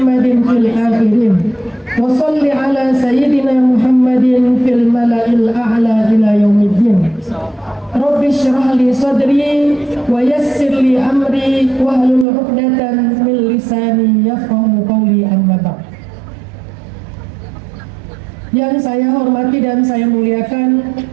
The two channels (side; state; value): left; drops out; at 12.2 s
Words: fil akhirin wa salli ala sayyidina Muhammadin fil mala'il a'la ila yaumiddin. Rabbi shrah li sadri wa yassir li amri wahlul 'uqdatan min lisani yafqahu qawli, amma ba'd. Yang saya hormati dan saya muliakan